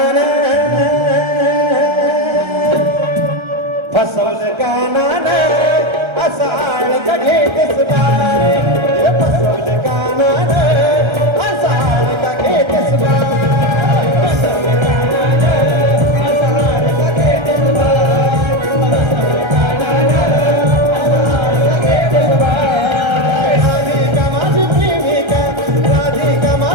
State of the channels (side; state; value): left; late; 1.3 ms